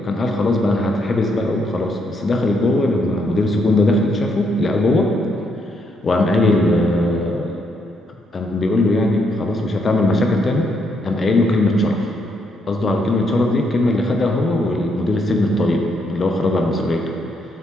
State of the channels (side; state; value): both; normal; correlation 0.75